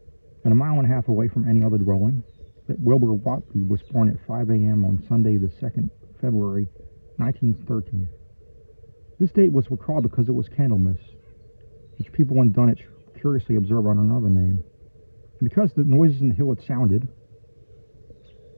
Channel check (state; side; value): inverted; both; correlation -1.00